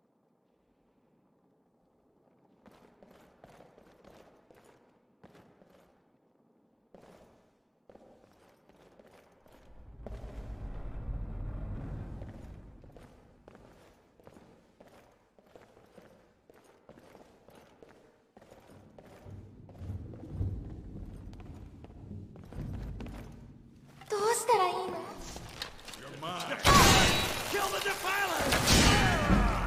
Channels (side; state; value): both; identical; correlation 1.00